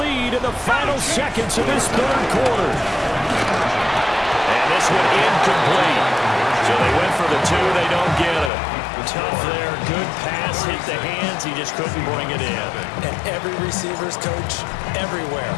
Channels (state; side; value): drops out; right; at 8.5 s